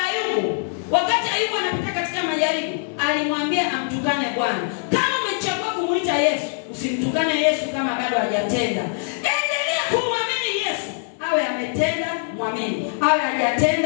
Ayubu, wakati Ayubu anapita katika majaribu, alimwambia amtukane Bwana. Kama umechagua kumuita Yesu, usimtukane Yesu kama bado hajatenda. Endelea kumwamini Yesu. Awe ametenda, mwamini. Awe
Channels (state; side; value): silent; right; 64 dB below the other